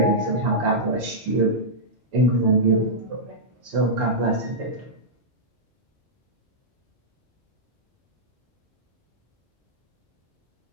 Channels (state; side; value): normal; both; correlation -0.11